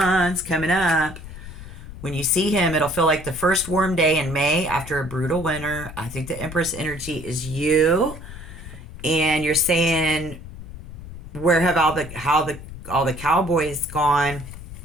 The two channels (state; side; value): noise; left; rumble, 13 dB below the sound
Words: coming up. When you see him, it'll feel like the first warm day in May after a brutal winter. I think the Empress energy is you. And you're saying, where have all the cowboys gone?